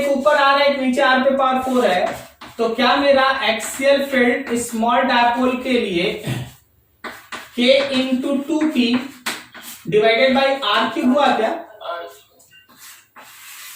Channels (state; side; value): identical; both; correlation 1.00